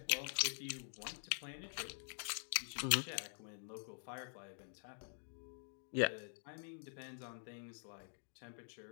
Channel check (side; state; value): right; silent; digital silence